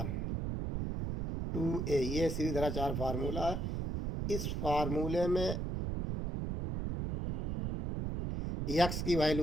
2a। ये श्रीधराचार्य फार्मूला है। इस फार्मूले में एक्स की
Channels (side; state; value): right; noise; rumble, 2 dB below the sound